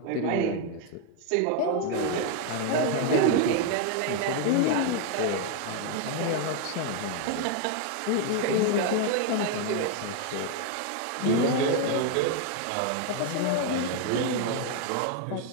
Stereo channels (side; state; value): both; different; correlation 0.01